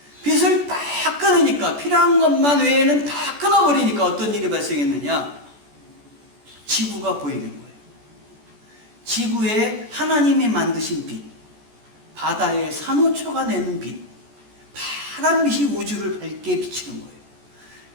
빛을 다 끊으니까, 필요한 것만 외에는 다 끊어버리니까 어떤 일이 발생했느냐? 지구가 보이는 거예요. 지구에 하나님이 만드신 빛, 바다에 산호초가 내는 빛, 파란 빛이 우주를 밝게 비치는 거예요.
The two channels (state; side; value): late; left; 14 ms